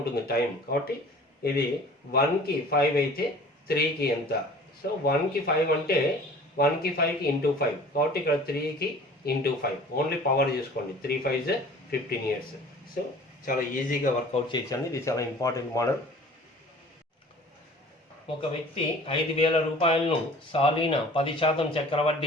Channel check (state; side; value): normal; both; correlation 0.47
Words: టైం. కాబట్టి ఇది 1కి 5 అయితే 3కి ఎంత? సో 1కి 5 అంటే 1కి 5కి × 5 కాబట్టి ఇక్కడ 3కి × 5 ఓన్లీ పవర్ చూసుకోండి. 3 5s 15 years. సో చాలా ఈజీగా వర్కౌట్ చేయొచ్చండి. ఇది చాలా ఇంపార్టెంట్ మోడల్. ఒక వ్యక్తి 5,000 రూపాయలను సాలీన 10%